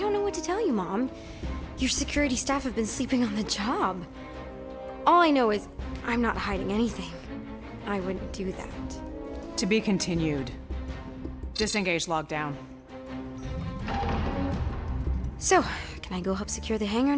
know what to tell you, Mom. Your security staff have been sleeping on the job. All I know is I'm not hiding anything. I wouldn't do that. To be continued. Disengage lockdown. So, can I go help secure the hangar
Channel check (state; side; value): identical; both; correlation 1.00